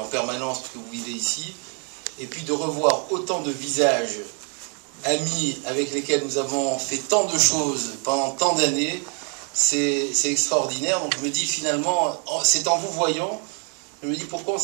permanence, que vous vivez ici. Et puis de revoir autant de visages amis avec lesquels nous avons fait tant de choses pendant tant d'années, c'est extraordinaire. Donc je me dis finalement, c'est en vous voyant, je me dis pourquoi on ne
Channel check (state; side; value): quieter; left; 38.9 dB